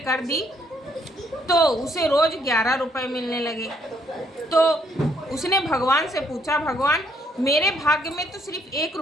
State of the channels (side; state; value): both; normal; correlation 0.70